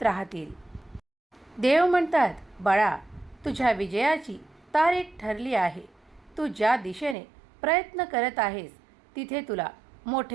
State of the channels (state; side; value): drops out; left; at 7.2 s